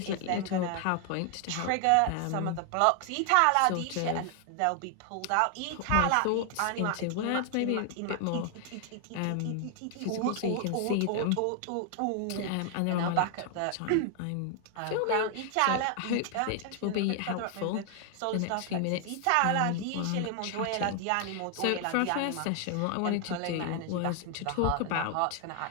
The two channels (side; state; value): both; different; correlation 0.00